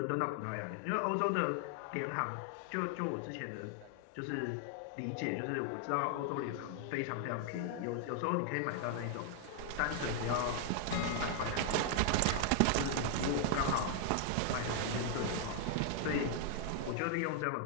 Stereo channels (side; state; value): both; different; correlation 0.00